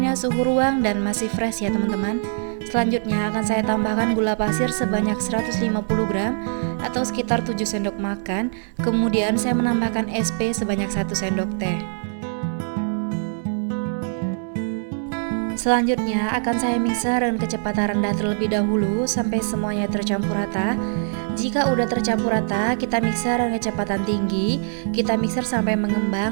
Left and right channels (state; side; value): silent; left; digital silence